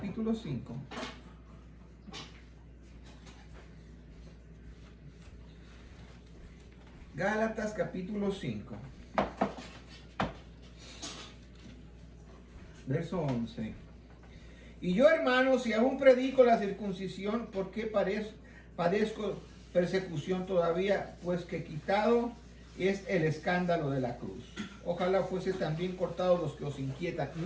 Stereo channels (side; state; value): both; identical; correlation 1.00